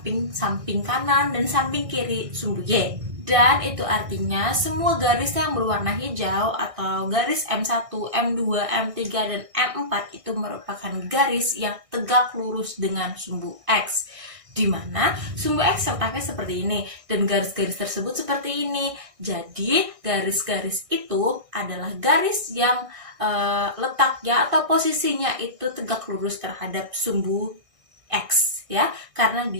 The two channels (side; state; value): left; late; 1.6 ms